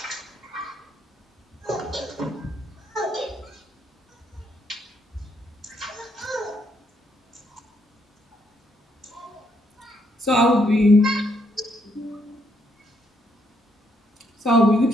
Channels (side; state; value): both; normal; correlation 0.74